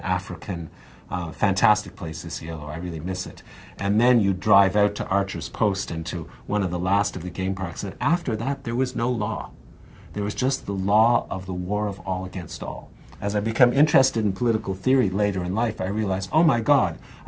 African. Fantastic place, Isiolo. I really miss it. And then you drive out to Archer's Post and to one of the last of the game parks. And after that, there was no law. There was just the law of the war of all against all. As I become interested in political theory later in life, I realized, oh my God,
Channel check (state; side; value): identical; both; correlation 1.00